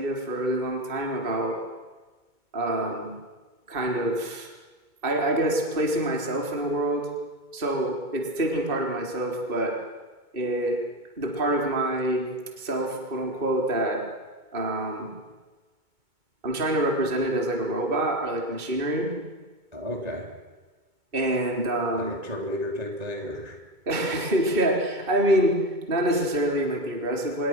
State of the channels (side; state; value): left; late; 2.2 ms